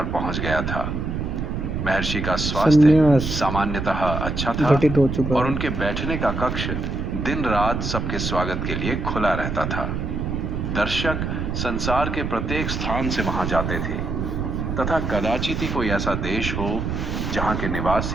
पहुंच गया था। महर्षि का स्वास्थ्य सामान्यतः अच्छा था और उनके बैठने का कक्ष दिन रात सबके स्वागत के लिए खुला रहता था। दर्शक संसार के प्रत्येक स्थान से वहां जाते थे तथा कदाचित ही कोई ऐसा देश हो जहां के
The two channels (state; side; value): noise; right; rumble, 2 dB below the sound